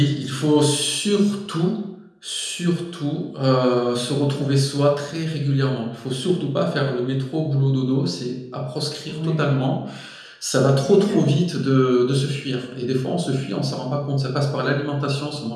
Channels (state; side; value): identical; both; correlation 1.00